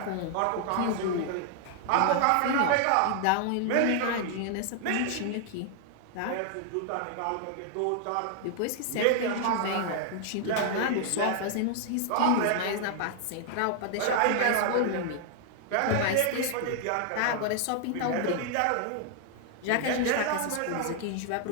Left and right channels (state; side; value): different; both; correlation 0.00